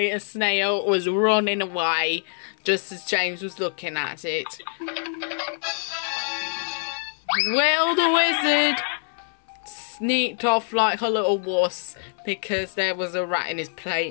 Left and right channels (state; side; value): silent; right; 62 dB below the other